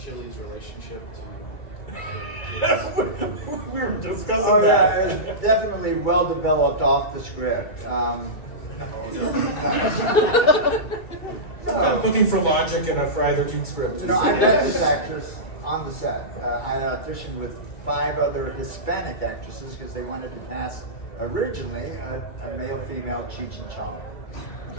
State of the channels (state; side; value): late; right; 2.3 ms